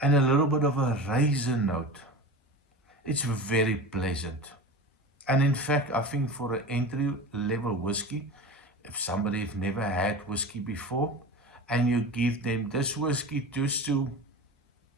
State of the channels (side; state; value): both; normal; correlation 0.30